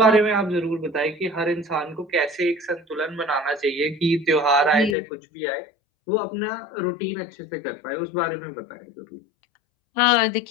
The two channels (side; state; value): right; drops out; at 5.0 s